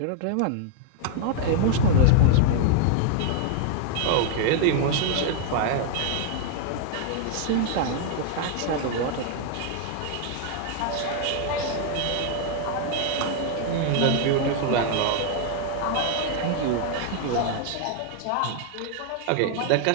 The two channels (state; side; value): different; both; correlation 0.00